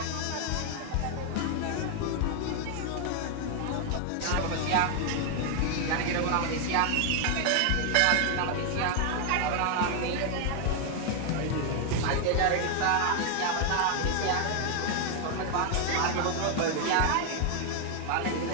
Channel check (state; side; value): different; both; correlation 0.01